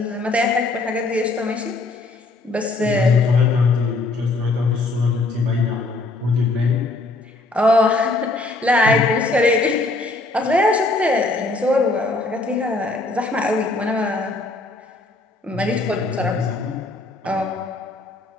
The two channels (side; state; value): right; quieter; 3.2 dB